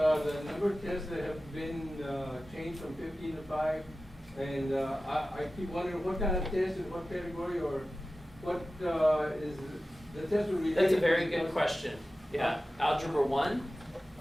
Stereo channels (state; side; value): normal; both; correlation 0.95